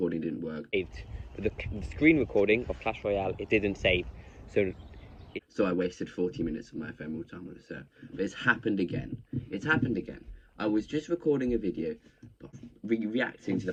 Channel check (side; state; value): both; identical; correlation 1.00